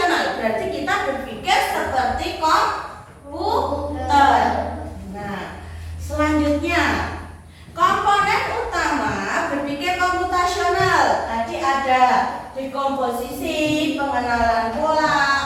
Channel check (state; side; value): identical; both; correlation 1.00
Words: berarti kita berpikir seperti komputer. Nah, selanjutnya komponen utama berpikir komputasional tadi ada dekomposisi, pengenalan pola,